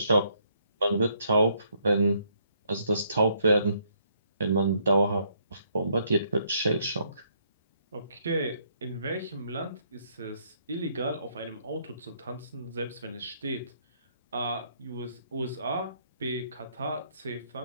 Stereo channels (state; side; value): inverted; both; correlation -0.70